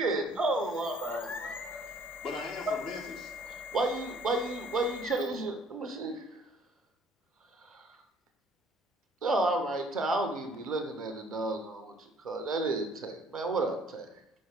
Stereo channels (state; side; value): normal; both; correlation 0.57